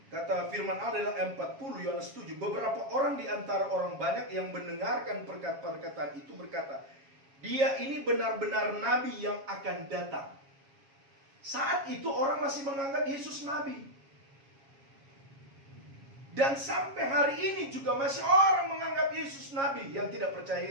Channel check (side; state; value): left; late; 7.3 ms